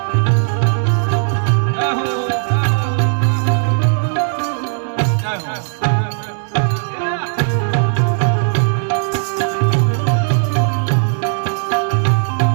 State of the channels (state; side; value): silent; left; 68 dB below the other